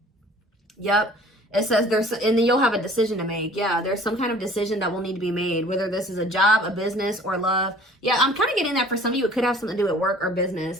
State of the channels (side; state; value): both; normal; correlation 0.50